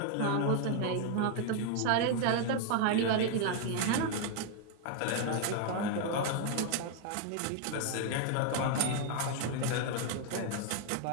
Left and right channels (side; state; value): both; different; correlation 0.00